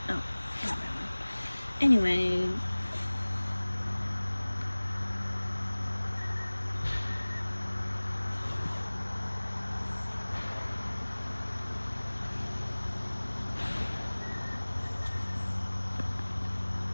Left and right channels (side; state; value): both; inverted; correlation -1.00